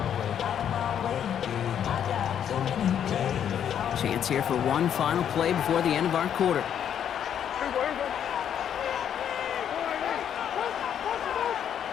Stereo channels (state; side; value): quieter; right; 9.1 dB